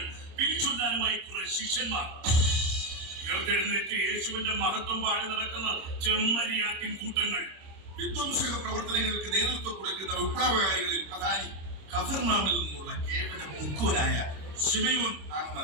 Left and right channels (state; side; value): late; left; 26 ms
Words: പിൻചൊല്ലാനുമായി കുറെ ശിഷ്യന്മാർ. ഉയർത്തെഴുന്നേറ്റ് യേശുവിന്റെ മഹത്വം പാടി നടക്കുന്ന ചെമ്മരിയാട്ടിൻ കൂട്ടങ്ങൾ. വിധ്വംസക പ്രവർത്തനങ്ങൾക്ക് നേതൃത്വം കൊടുക്കുന്ന വിപ്ലവകാരികളിൽ പ്രധാനി കഫർനാമിൽ നിന്നുള്ള കേവല മുക്കുവനായ ശിമയോൻ ആണെന്ന്